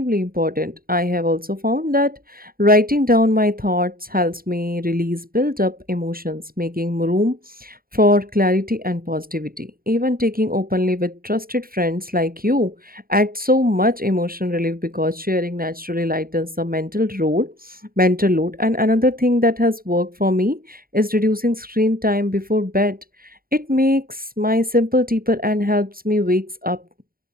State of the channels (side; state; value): left; late; 0.43 ms